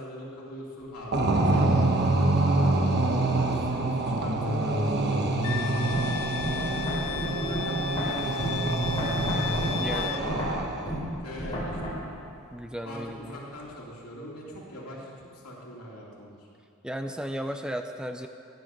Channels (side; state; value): both; normal; correlation 0.57